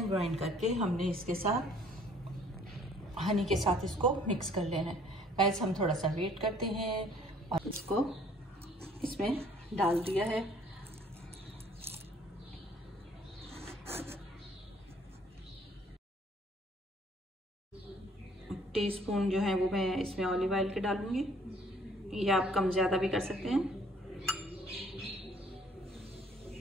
ग्राइंड करके हमने इसके साथ हनी के साथ इसको मिक्स कर लेना है। गाइस हम थोड़ा सा वेट करते हैं और इसको इसमें डाल दिया है। टीस्पून जो है वो मैं इसमें ऑलिव ऑयल के डालूंगी, या आप कम ज़्यादा भी कर सकते हैं।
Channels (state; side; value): normal; both; correlation 0.58